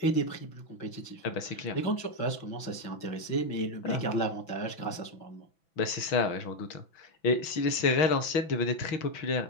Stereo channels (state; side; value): late; right; 6.0 ms